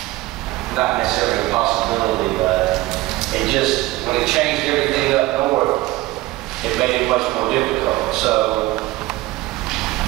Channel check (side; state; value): left; quieter; 18.8 dB